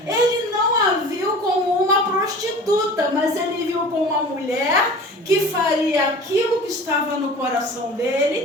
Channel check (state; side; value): normal; both; correlation 0.40